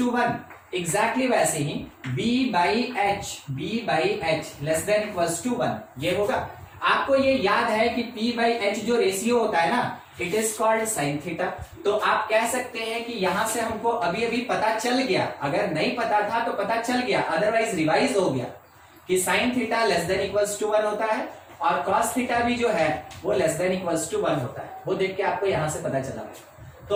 1। Exactly वैसे ही b/h less than equals to 1 ये होगा। आपको ये याद है कि p/h जो रेशियो होता है ना, it is called sine theta. तो आप कह सकते हैं कि यहां से हमको अभी अभी पता चल गया, अगर नहीं पता था तो पता चल गया, अदरवाइज रिवाइज हो गया कि sine theta less than equals to 1 होता है, और cos थीटा भी जो है वो लेस देन इक्वल्स टू 1 होता है। वो देख के आपको यहां से पता चला।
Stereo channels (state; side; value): identical; both; correlation 1.00